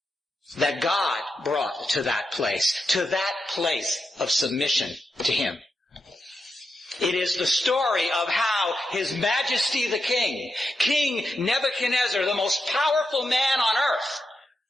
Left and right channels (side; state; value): both; normal; correlation 0.87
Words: that God brought to that place of submission to Him. It is the story of how His Majesty the King, King Nebuchadnezzar, the most powerful man on earth,